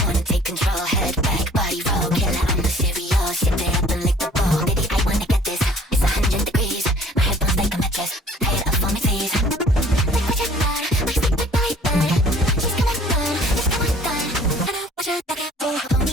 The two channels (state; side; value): normal; both; correlation 0.53